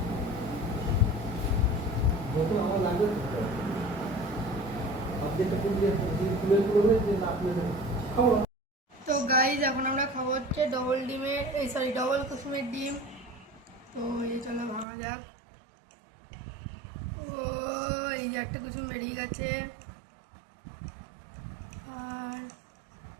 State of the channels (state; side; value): drops out; left; at 14.9 s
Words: তো গাইস এখন আমরা খাবো হচ্ছে ডবল ডিমের ডবল কুসুমের ডিম। তো এই চলো ভাঙা যাক। ও এই যে একটা কুসুম বেরিয়ে গেছে আর